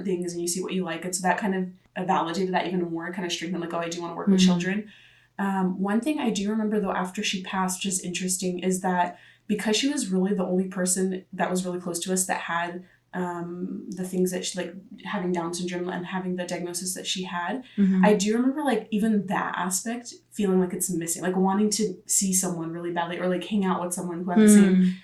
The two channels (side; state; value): both; identical; correlation 1.00